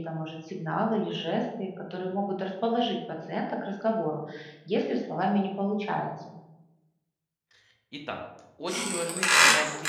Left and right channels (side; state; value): both; identical; correlation 1.00